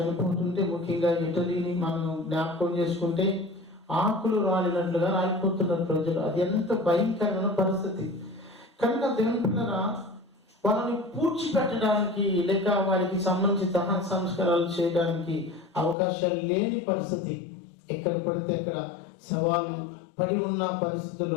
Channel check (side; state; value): right; drops out; at 16.0 s